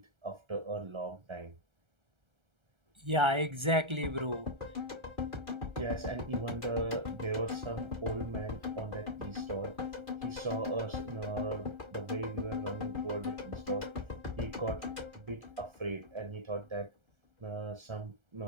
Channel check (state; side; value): late; left; 1.3 ms